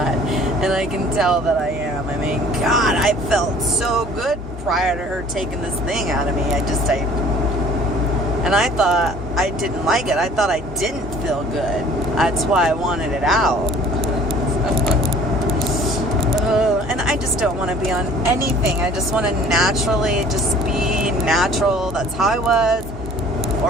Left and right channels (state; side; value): noise; right; hum, 18 dB below the sound